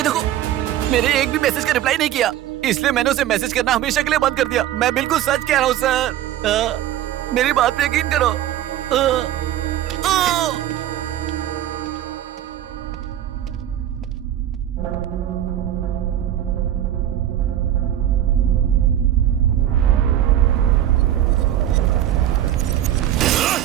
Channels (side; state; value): left; quieter; 11.9 dB